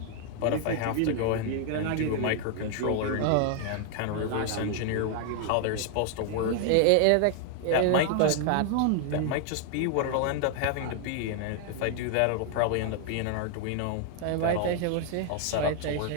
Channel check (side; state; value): both; different; correlation 0.00